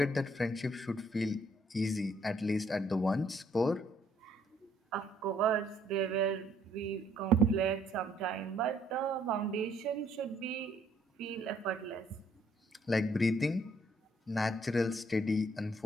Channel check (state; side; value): normal; both; correlation 0.66